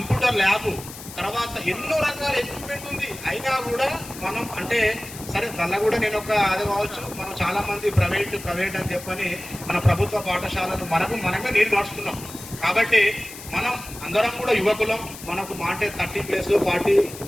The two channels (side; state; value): left; noise; hiss, 14 dB below the sound